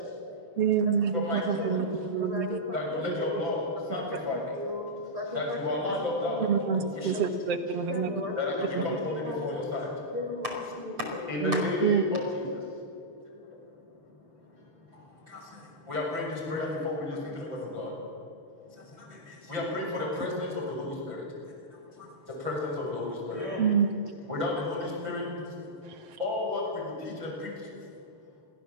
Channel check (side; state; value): left; late; 6.7 ms